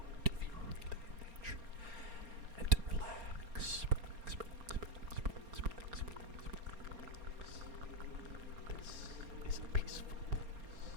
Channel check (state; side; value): late; left; 4.3 ms